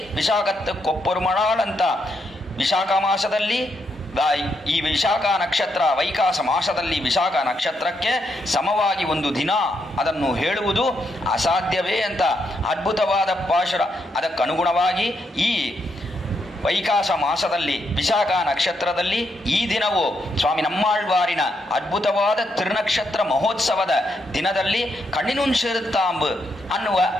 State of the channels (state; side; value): normal; both; correlation 0.79